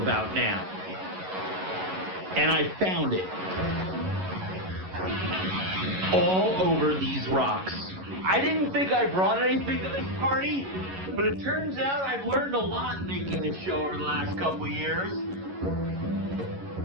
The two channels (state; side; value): late; left; 11 ms